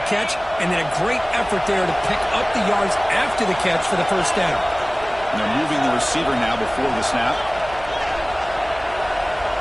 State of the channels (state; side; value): noise; right; rumble, 18 dB below the sound